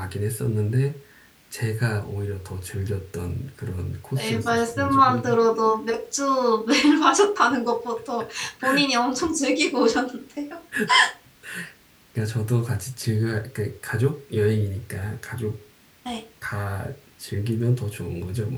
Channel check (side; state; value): both; identical; correlation 1.00